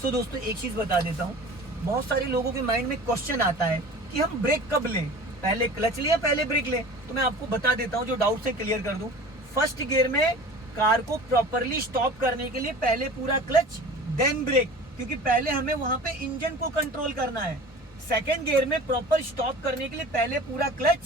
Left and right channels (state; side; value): normal; both; correlation 0.40